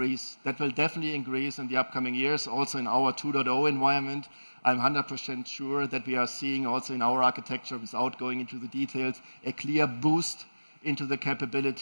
That will definitely increase in the upcoming years, also in our 2.0 environment. I'm 100% sure that we are seeing also in our architecture, without going into the details, a clear boost into the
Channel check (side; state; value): both; inverted; correlation -1.00